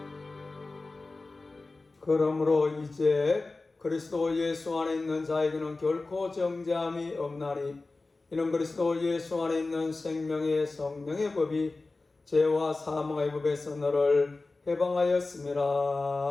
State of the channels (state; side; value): quieter; right; 3.4 dB